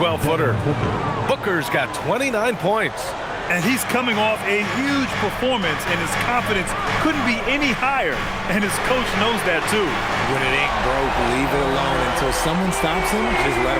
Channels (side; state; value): both; identical; correlation 1.00